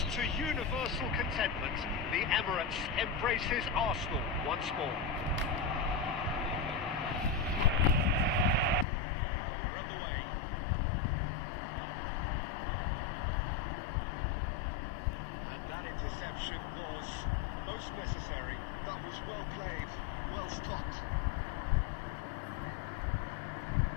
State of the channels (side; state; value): right; drops out; at 8.8 s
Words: to universal contentment the Emirates embraces Arsenal once more. We're on the way. And that interception was most necessary. That was well played, well stopped.